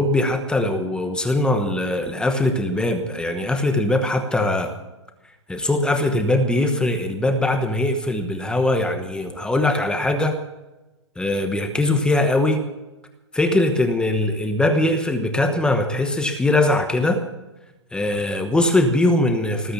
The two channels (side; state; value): both; normal; correlation 0.54